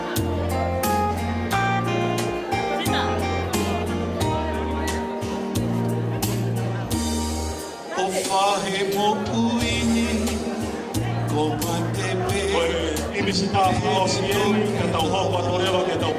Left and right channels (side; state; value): both; identical; correlation 1.00